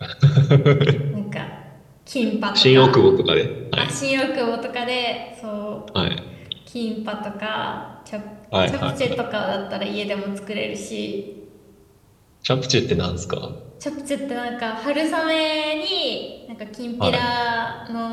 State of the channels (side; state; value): both; identical; correlation 1.00